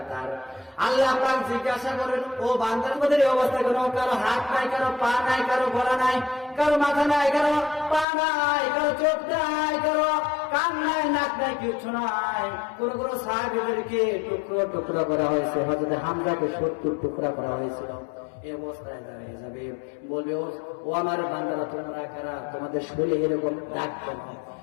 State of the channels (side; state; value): right; drops out; at 8.1 s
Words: আল্লাহ পাক জিজ্ঞাসা করেন, ও বান্দার মধ্যে এই অবস্থা কেন? কারো হাত নাই, কারো পা নাই, কারো গলা নাই, কারো মাথা নাই, কারো পা নাই, কারো চোখ নাই, কারো কান নাই, নাক নাই, কিছু নাই। কোন কোন সাহাবীদেরকে টুকরো টুকরো করা হয়েছে, হযরত হামজাকে 70 টুকরা করা হয়েছিল। এই অবস্থায় দাঁড়িয়ে যাবে, বলবে, ও আমার বান্দারা তোমরা কারা? তোমাদের শরীরে এরকম দাগ কেন?